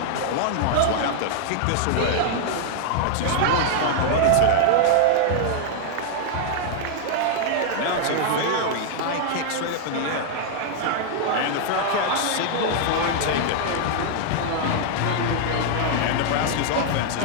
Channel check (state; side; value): different; both; correlation -0.01